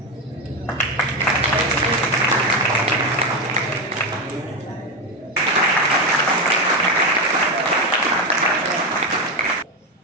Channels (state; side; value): normal; both; correlation 0.12